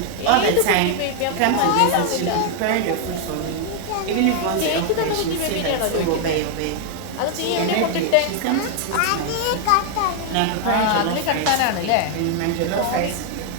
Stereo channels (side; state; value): both; different; correlation 0.00